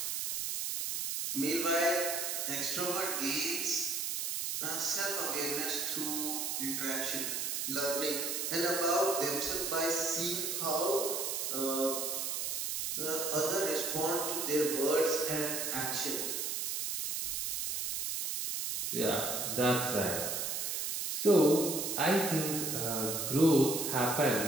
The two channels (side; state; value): right; noise; hiss, 1 dB below the sound